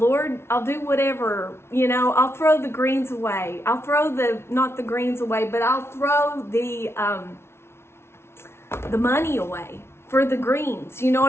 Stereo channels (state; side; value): late; right; 0.12 ms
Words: I'll do whatever, you know, I'll throw the greens away. I'll throw not the greens away, but I'll throw the money away for the greens. You know